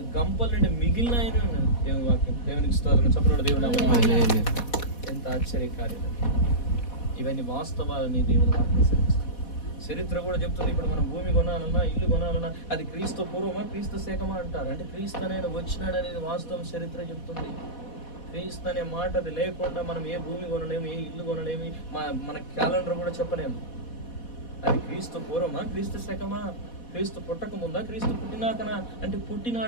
గంపల నుండి మిగిలిన దేవుని వాక్యం. దేవునికి స్తోత్రం. చెప్పండి దేవుని. ఎంత ఆశ్చర్యకార్యం. ఇవన్నీ వాస్తవాలని దేవుని వాక్యం సెలవిస్తుంది. చరిత్ర కూడా చెప్తుంది. ఇప్పుడు మనం భూమి కొనాలన్నా, ఇల్లు కొనాలన్నా అది క్రీస్తు పూర్వమా, క్రీస్తు శకమా అంటారు. అంటే క్రీస్తు అనేది వచ్చినాడు అనేది వాస్తవం చరిత్ర చెప్తుంది. క్రీస్తు అనే మాట అది లేకుండా మనం ఏ భూమి కొనలేము, ఏ ఇల్లు కొనలేము, మన క్యాలెండర్ కూడా చెప్పలేము. అది క్రీస్తు పూర్వమా, క్రీస్తు శకమా, క్రీస్తు పుట్టక ముందా, క్రీస్తు పుట్టినాకనా అంటే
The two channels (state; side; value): late; right; 4.1 ms